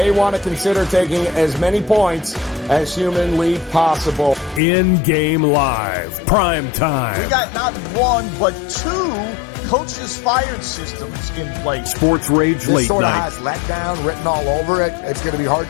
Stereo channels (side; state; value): right; drops out; at 4.6 s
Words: want to consider taking as many points as humanly possible. In-game live, prime time. We got not 1, but 2 coaches fired systems in place. Sports Rage this late sort of night. has letdown written all over it. It's going to be hard